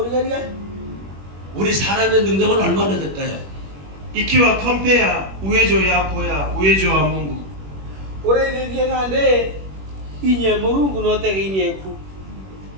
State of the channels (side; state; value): left; late; 21 ms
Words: 우리 사람의 능력은 얼마나 될까요? Ikiwa compare uwezo yako ya uwezo wa Mungu. Origaria ngande inye murungu no te inye ku.